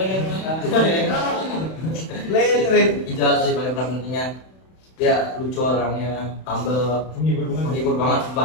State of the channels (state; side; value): late; right; 31 ms